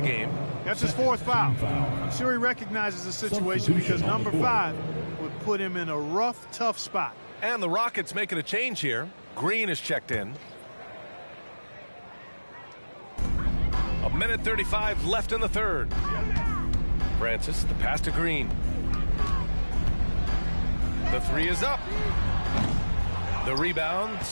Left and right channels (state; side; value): inverted; both; correlation -1.00